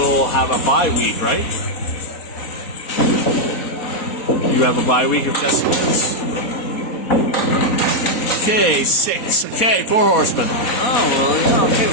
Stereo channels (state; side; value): late; right; 4.2 ms